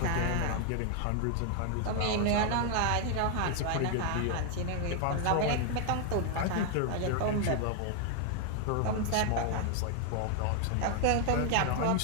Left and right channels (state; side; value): different; both; correlation 0.00